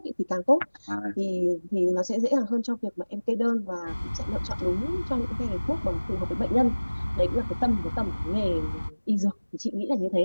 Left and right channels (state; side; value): inverted; both; correlation -1.00